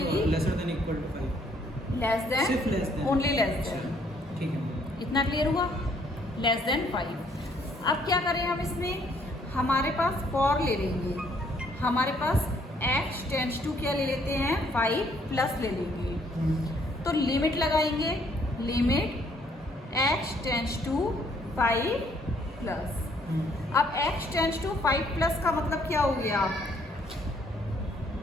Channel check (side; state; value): both; normal; correlation 0.66